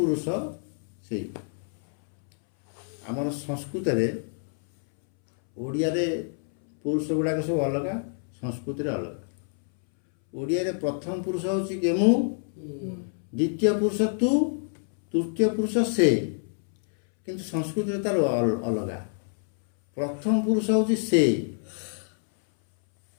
ସେଇ। ଆମର ସଂସ୍କୃତରେ ଓଡ଼ିଆରେ ପୁରୁଷ ଗୁଡ଼ାକ ସବୁ ଅଲଗା, ସଂସ୍କୃତିରେ ଅଲଗା। ଓଡ଼ିଆରେ ପ୍ରଥମ ପୁରୁଷ ହେଉଛି କି ମୁଁ, ଦ୍ୱିତୀୟ ପୁରୁଷ ତୁ, ତୃତୀୟ ପୁରୁଷ ସେ, କିନ୍ତୁ ସଂସ୍କୃତିରେ ତାର ଅଲଗା। ପ୍ରଥମ ପୁରୁଷ ହେଉଛି ସେ,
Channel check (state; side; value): silent; right; 60 dB below the other